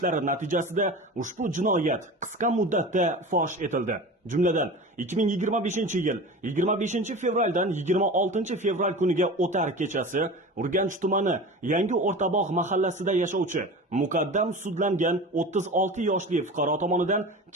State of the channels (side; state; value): both; normal; correlation 0.33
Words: natijasida ushbu jinoyat qisqa muddatda fosh etildi. Jumladan 2025-yil 25 fevraldan 26 fevral kuniga o'tar kechasi Urganch tumani Yangi O'rtabog' mahallasida yashovchi muqaddam sudlangan 36 yoshli fuqaro tomonidan